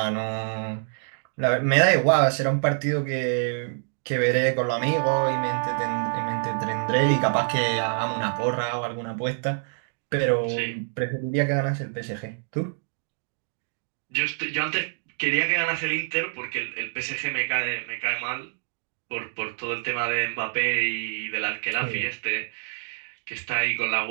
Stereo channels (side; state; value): left; silent; digital silence